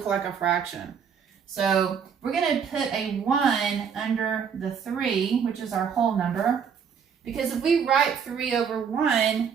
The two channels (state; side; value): quieter; left; 7.1 dB